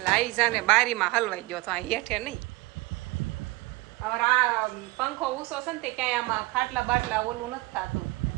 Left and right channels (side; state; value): left; quieter; 21.8 dB